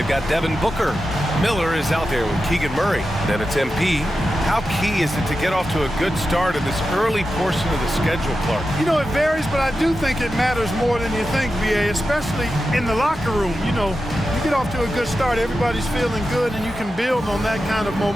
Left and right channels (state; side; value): normal; both; correlation 0.91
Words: got Devin Booker. Miller is out there with Keegan Murray. Then it's MP. How key is it to get off to a good start in this early portion of the schedule, Clark? You know, it varies, but I do think it matters more than you think, BA, especially in the locker room. You know, you get off to a good start, everybody's feeling good, and you can build on that kind of